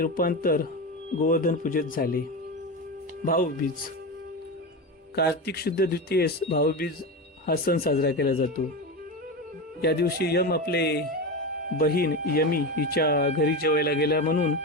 गोवर्धन पूजेत झाले. भाऊबीज. कार्तिक शुद्ध द्वितीयेस भाऊबीज हा सण साजरा केला जातो. या दिवशी यम आपले बहीण यमी हिच्या घरी जेवायला गेला म्हणून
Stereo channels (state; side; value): normal; both; correlation 0.20